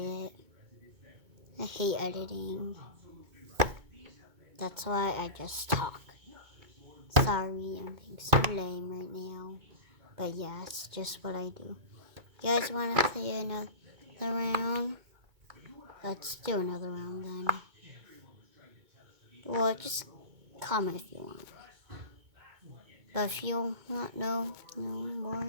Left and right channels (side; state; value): left; late; 2.2 ms